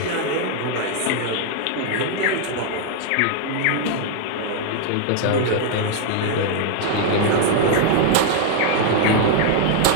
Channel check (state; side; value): different; both; correlation 0.00